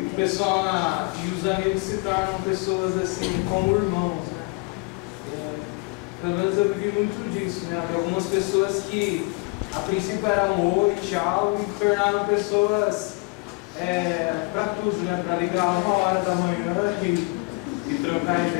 o pessoal e os amigos se tornam pessoas assim como irmãos, né? Pelo menos eu vivi muito disso, né? Havia algumas pessoas que a princípio era um oi, tchau, e tornaram pessoas para tudo, né? Para ligar 1h da manhã e trocar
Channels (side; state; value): right; quieter; 28.8 dB